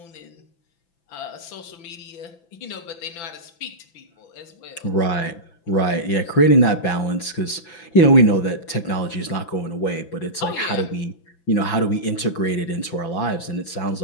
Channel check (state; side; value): late; right; 6.0 ms